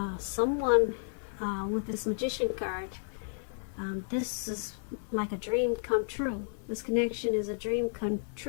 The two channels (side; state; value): right; silent; digital silence